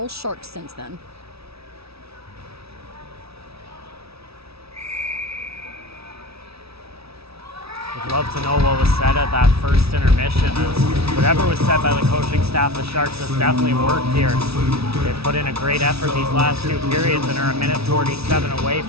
Sharks since then. Would love to know what was said at that first intermission. As whatever was said by the coaching staff, the Sharks has definitely worked here. They've put in a great effort these last 2 periods and are a minute 47 away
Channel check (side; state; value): left; late; 0.77 ms